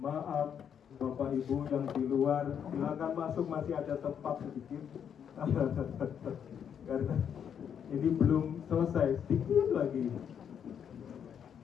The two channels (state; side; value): quieter; right; 8.2 dB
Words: Bapak Ibu yang di luar, silakan masuk, masih ada tempat sedikit. Karena ini belum selesai, sedikit lagi.